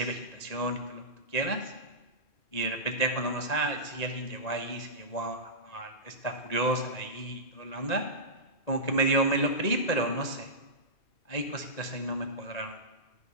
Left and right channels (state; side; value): late; right; 1.9 ms